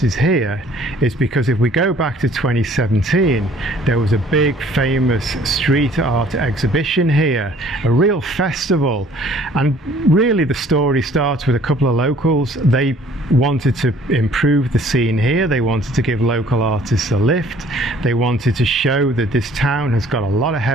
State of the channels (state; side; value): normal; both; correlation 0.56